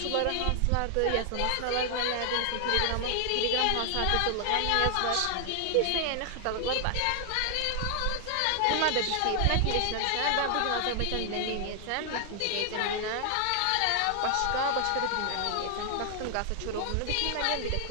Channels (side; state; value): both; different; correlation 0.00